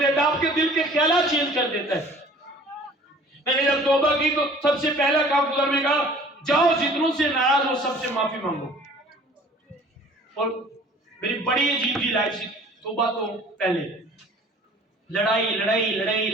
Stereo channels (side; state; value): both; normal; correlation 0.49